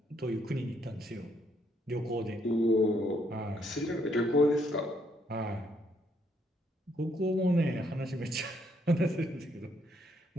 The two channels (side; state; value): both; normal; correlation 0.72